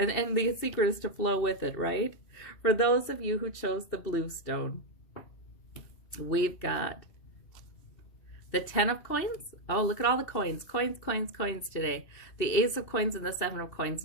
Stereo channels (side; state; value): right; late; 2.7 ms